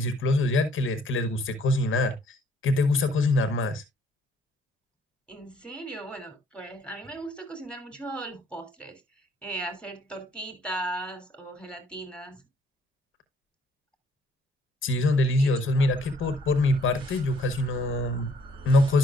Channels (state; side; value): normal; both; correlation 0.63